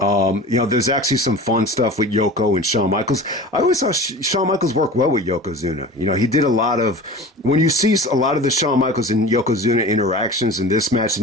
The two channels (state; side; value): normal; both; correlation 0.37